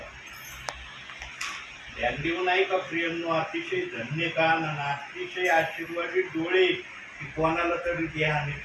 ध्यान देऊ नाही का प्रियांनो? अतिशय धन्य कान आणि अतिशय आशीर्वादित डोळे की कोणाला तरी ध्यान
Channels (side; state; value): both; identical; correlation 1.00